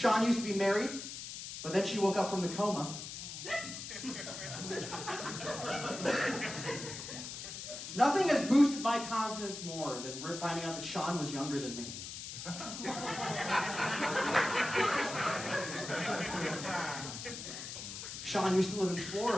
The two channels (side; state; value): left; noise; hiss, 8 dB below the sound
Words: used to be married, but then she woke up from the coma. Nothing has boosted my confidence more than finding out that Sean was younger than me. Sean used to live in